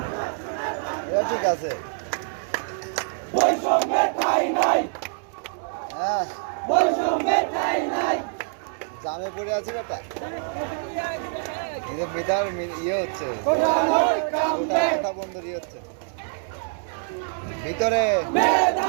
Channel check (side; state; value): left; silent; 62 dB below the other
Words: ঠিক আছে, হ্যাঁ জামে পড়ে আছি বেটা। মেধার ইয়ে হচ্ছে, কথা বন্ধুর ইয়ে হচ্ছে ভিতরে।